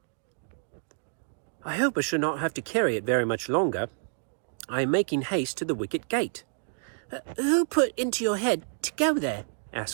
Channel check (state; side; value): silent; left; digital silence